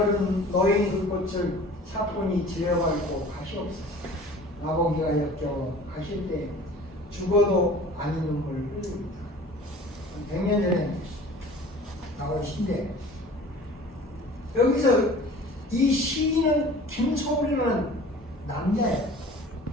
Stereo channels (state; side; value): normal; both; correlation 0.45